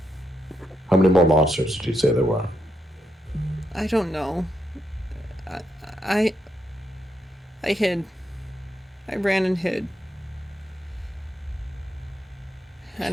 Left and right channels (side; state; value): both; normal; correlation 0.81